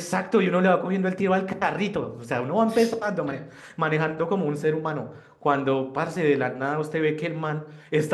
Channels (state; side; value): identical; both; correlation 1.00